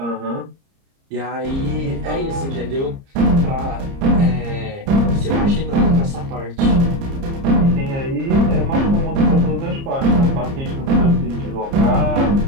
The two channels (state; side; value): late; left; 30 ms